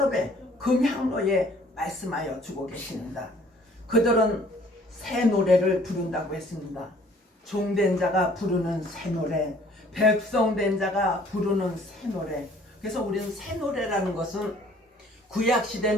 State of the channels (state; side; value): normal; both; correlation 0.57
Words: 금향로에 말씀하여 주고 계십니다. 그들은 새 노래를 부른다고 했습니다. 종된 자가 부르는 새 노래, 백성된 자가 부르는 새 노래. 그래서 우리는 새 노래라는 것은